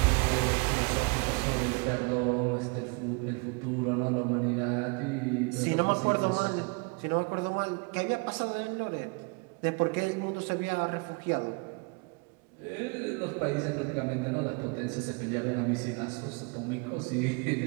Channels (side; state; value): left; quieter; 31.5 dB